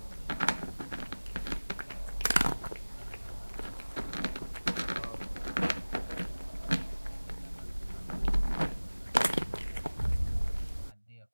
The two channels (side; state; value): both; inverted; correlation -1.00